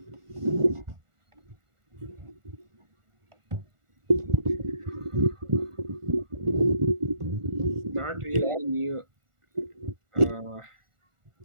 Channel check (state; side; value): late; left; 1.4 ms